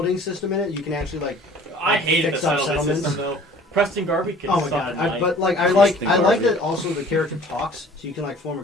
system in it. You can actually like I hated the fix up settlement settlements. system though. Preston Garvey can Oh my suck god! at But night. like I Interesting like garbage. that also the character talks, so you can like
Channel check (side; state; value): both; normal; correlation 0.50